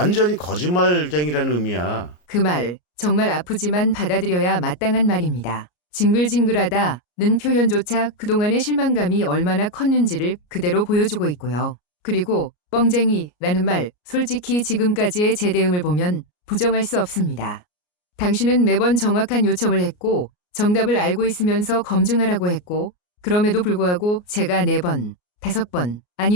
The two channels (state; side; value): late; right; 33 ms